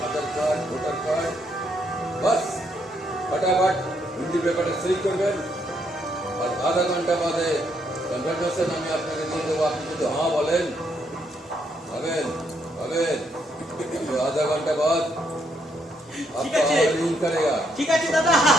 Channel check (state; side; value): normal; both; correlation 0.74